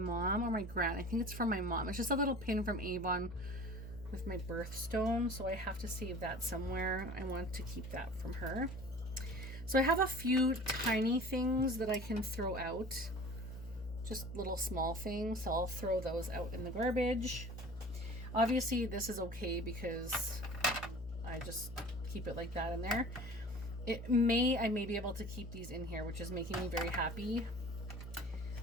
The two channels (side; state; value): left; noise; hum, 11 dB below the sound